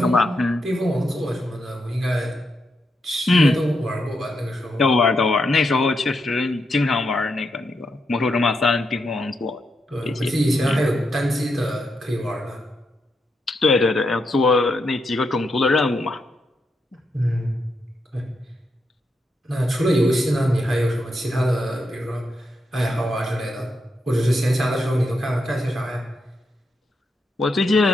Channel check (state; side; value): normal; both; correlation 0.83